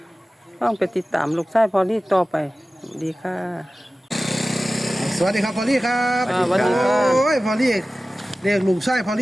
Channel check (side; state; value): both; normal; correlation 0.96